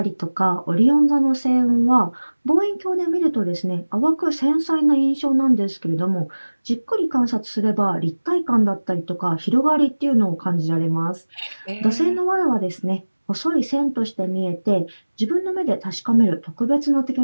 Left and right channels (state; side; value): inverted; both; correlation -1.00